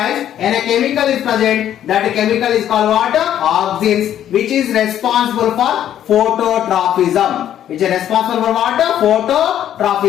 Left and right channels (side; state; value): right; quieter; 10.8 dB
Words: and a chemical is present. That chemical is called what? Auxins, which is responsible for phototrophism. Which is responsible for what?